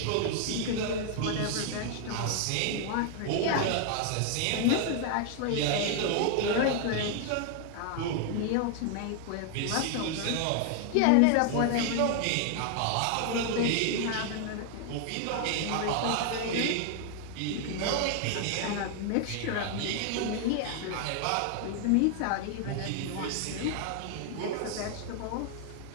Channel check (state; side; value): different; both; correlation 0.00